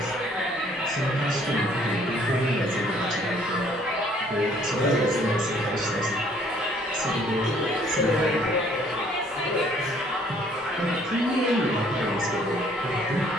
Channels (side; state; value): both; normal; correlation 0.60